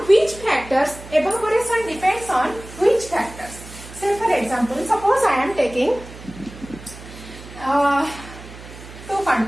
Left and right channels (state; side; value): noise; right; hum, 16 dB below the sound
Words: which factors evaporation depends on which factors? Say for example, suppose I am taking two